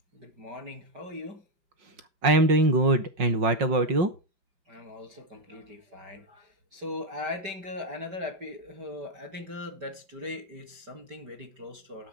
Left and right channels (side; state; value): left; late; 5.5 ms